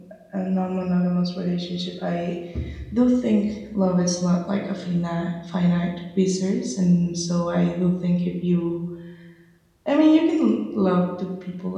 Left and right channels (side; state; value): both; identical; correlation 1.00